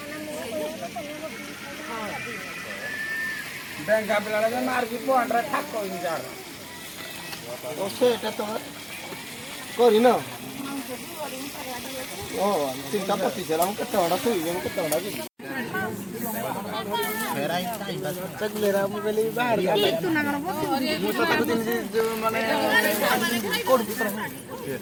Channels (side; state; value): both; identical; correlation 1.00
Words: बैंक का पिला लगे मार की पोंड्रा ठाक कोई नहीं जा रहा ओसे এটা তো করি না ও চিন্তা করতেছিলাম কত বড় তুই কত বড় কি ফেরাই তাই বাস চগলেরা মোবাইলে বাহির গেল একটু না মানে মু তো তাকে দিন যে মানে কোড ভিতর